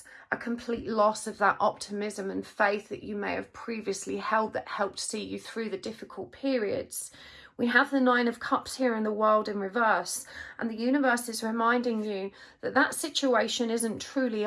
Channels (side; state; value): both; identical; correlation 1.00